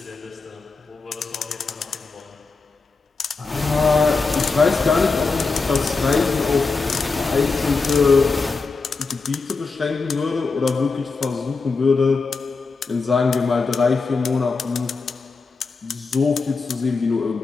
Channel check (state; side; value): quieter; right; 4.3 dB